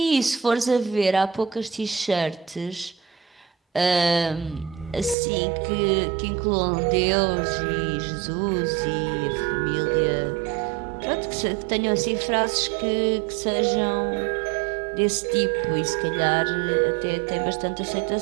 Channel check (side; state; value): left; drops out; at 5.2 s